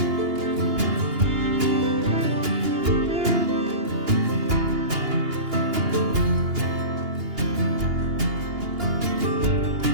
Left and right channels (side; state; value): left; late; 2.8 ms